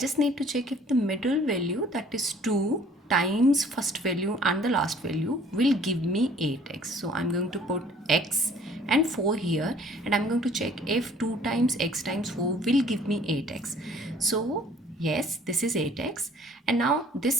need to check if the middle value, that is 2 times first value and the last value, will give me 8x. So I'm going to put x and 4 here, and I'm going to check if 2 times x times 4 will give me 8x. So yes, this is 8x, and now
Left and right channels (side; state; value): both; normal; correlation 0.55